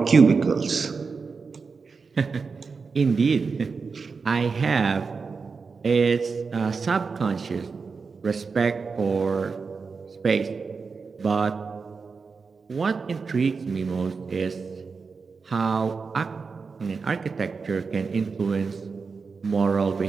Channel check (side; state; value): left; quieter; 4.9 dB